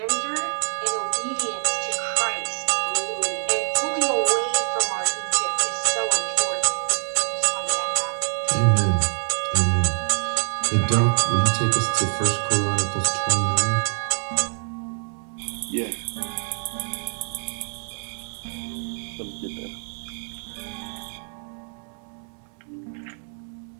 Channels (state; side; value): silent; left; digital silence